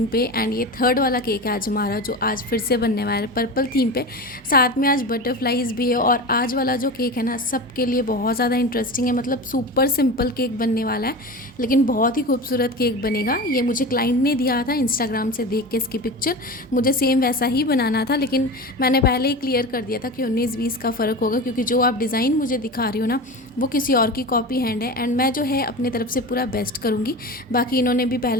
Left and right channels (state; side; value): normal; both; correlation 0.28